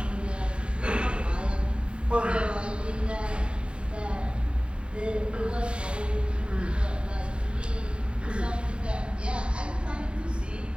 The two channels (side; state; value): left; late; 0.053 ms